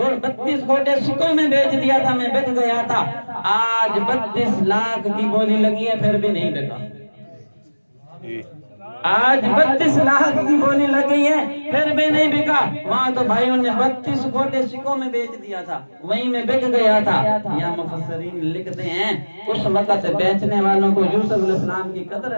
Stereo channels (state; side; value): inverted; both; correlation -1.00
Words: گھوٹے سکوں میں بیچ دیا تھا، میں بک گیا تھا۔ آج 32 لاکھ کی بولی لگی ہے، پھر بھی نہیں بکا۔ آج 32 لاکھ کی بولی لگ گئی ہے، پھر بھی نہیں بکا۔ وہاں تو بھائیوں نے 32 گھوٹے سکوں میں بیچ دیا تھا، وہیں میں بک گیا تھا۔ یا مفسرین لکھتے ہیں اس وقت بیچنے والوں کو یوسف علیہ السلام کی قدر